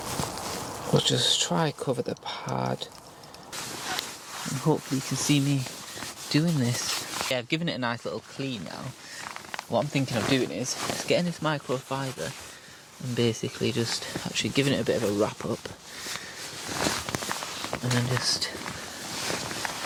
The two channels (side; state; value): both; identical; correlation 1.00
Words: We'll just try cover the pad, and hopefully you can see me doing this. Yeah, I've given it a nice little clean now. What I'm thinking of doing is just getting this microfiber and basically just actually giving it a bit of a wrap up, and then just,